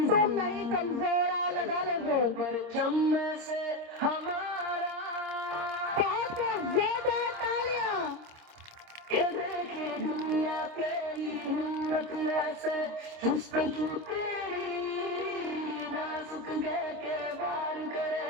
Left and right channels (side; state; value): left; late; 26 ms